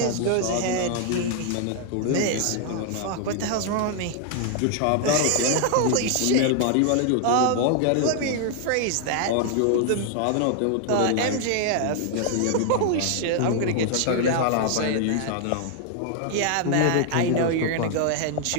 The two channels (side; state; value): both; different; correlation 0.00